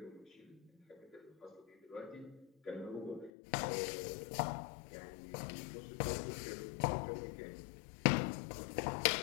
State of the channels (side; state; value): right; drops out; at 3.3 s